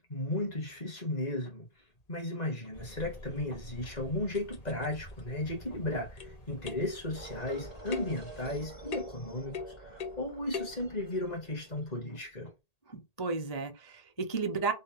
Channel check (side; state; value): right; late; 1.8 ms